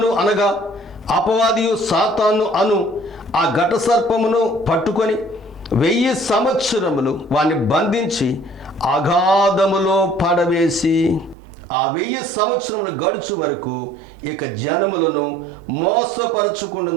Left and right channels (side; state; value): left; drops out; at 11.4 s